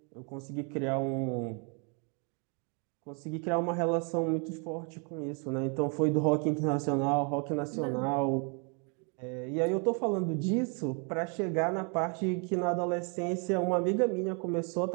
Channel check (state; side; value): quieter; left; 36.7 dB